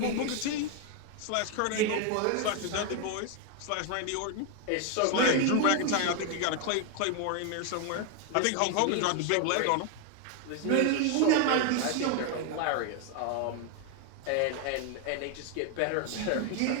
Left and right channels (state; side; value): different; both; correlation 0.01